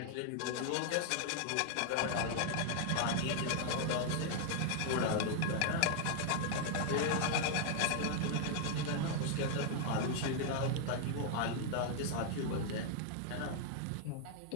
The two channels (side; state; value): both; different; correlation 0.00